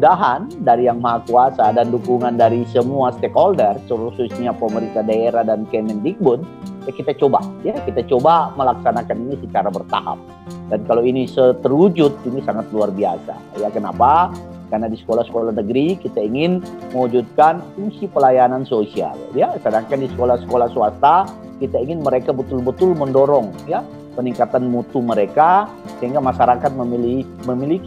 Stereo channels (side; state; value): both; identical; correlation 1.00